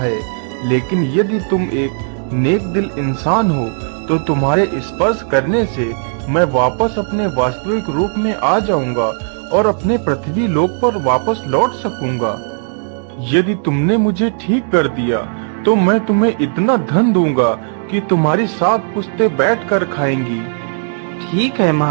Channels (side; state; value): left; silent; digital silence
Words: लेकिन यदि तुम एक नेक दिल इंसान हो तो तुम्हारे स्पर्श करने से मैं वापस अपने वास्तविक रूप में आ जाऊंगा और अपने पृथ्वी लोक पर वापस लौट सकूंगा। यदि तुमने मुझे ठीक कर दिया तो मैं तुम्हें इतना धन दूंगा कि तुम्हारी 7 पुश्तें बैठकर खाएंगी। ठीक है